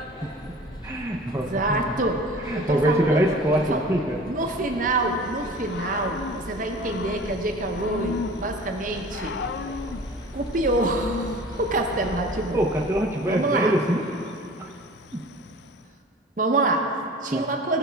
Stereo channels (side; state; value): both; normal; correlation 0.42